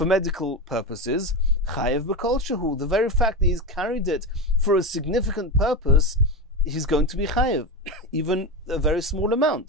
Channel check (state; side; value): normal; both; correlation 0.18